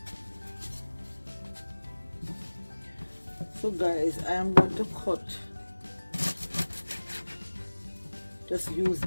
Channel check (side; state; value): both; inverted; correlation -1.00